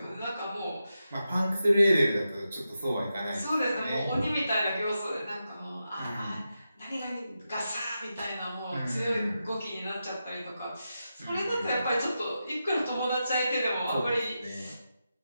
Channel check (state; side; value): inverted; both; correlation -0.89